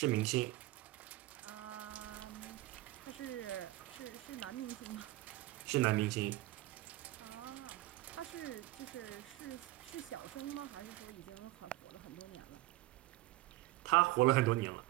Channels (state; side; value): quieter; left; 17.7 dB